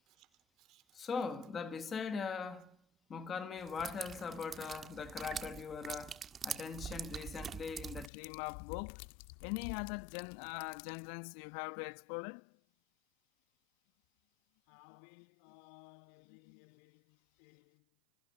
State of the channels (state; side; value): drops out; right; at 8.1 s